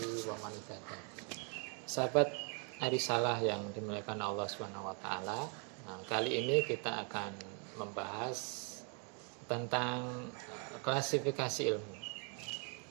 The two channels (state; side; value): quieter; left; 38.6 dB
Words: wa man ittaba'a. Sahabat Arisalah yang dimuliakan Allah Subhanahu wa taala. Nah, kali ini kita akan membahas tentang klasifikasi ilmu.